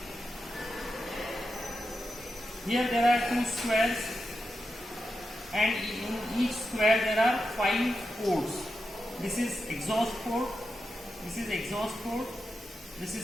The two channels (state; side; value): normal; both; correlation 0.88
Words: Here there are two squares, and in each square there are 5 ports. This is exhaust port, this is exhaust port, this